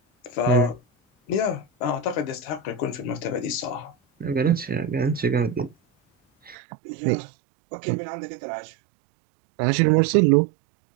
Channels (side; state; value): left; drops out; at 6.6 s